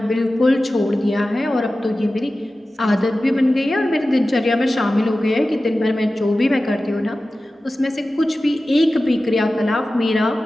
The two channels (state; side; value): normal; both; correlation 0.95